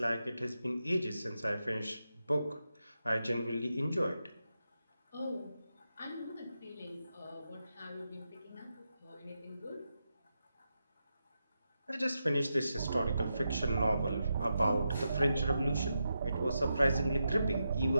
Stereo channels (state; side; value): inverted; both; correlation -0.87